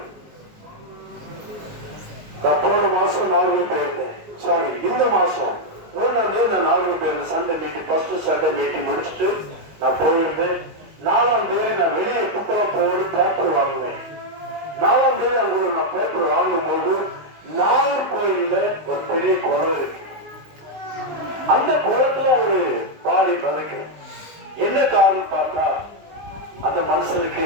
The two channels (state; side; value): late; left; 19 ms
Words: நான் போன மாசம் நாகூர் போயிருந்தேன். சாரி, இந்த மாசம் 3ஆம் தேதி நான் நாகூர் போயிருந்தேன். Sunday meeting, first Sunday meeting முடிச்சுட்டு நான் போயிருந்தேன். 4ஆம் தேதி நான் வெளியே குப்பை போய் பேப்பர் வாங்குவேன். 4ஆம் தேதி அங்க நான் பேப்பர் வாங்கும்போது நாகர்கோயில்ல ஒரு பெரிய குளம் இருக்கு. அந்த குளத்துல ஒரு பாடி பதக்கு. என்ன காரணம் பார்த்தா, அந்த மனுஷனுக்கு